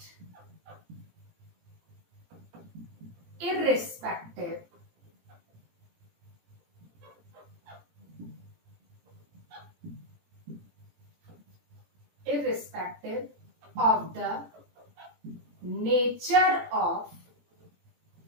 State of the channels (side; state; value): left; late; 17 ms